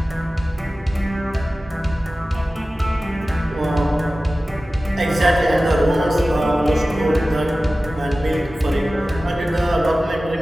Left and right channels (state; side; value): normal; both; correlation 0.96